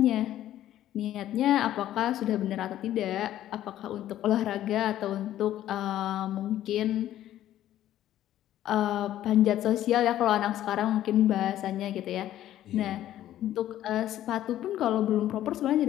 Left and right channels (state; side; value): quieter; right; 12.7 dB